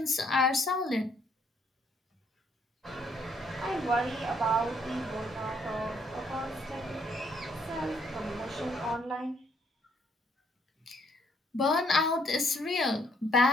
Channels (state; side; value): normal; both; correlation 0.68